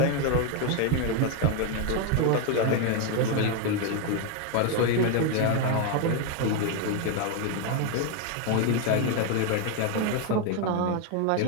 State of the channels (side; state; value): both; different; correlation 0.01